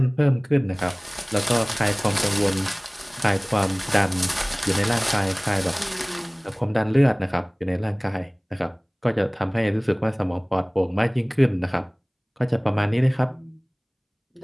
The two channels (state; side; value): identical; both; correlation 1.00